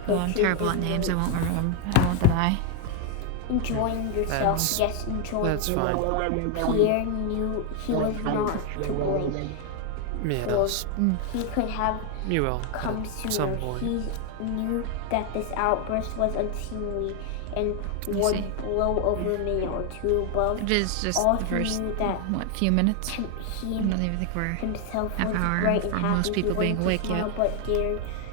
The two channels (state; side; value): different; both; correlation 0.01